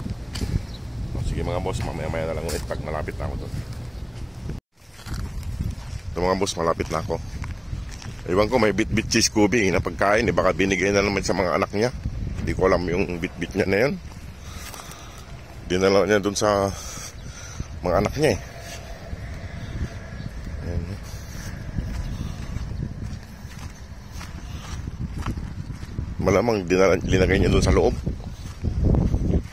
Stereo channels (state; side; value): identical; both; correlation 1.00